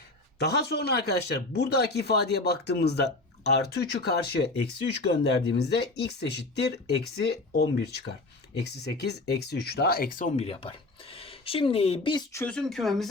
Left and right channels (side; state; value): right; quieter; 3.0 dB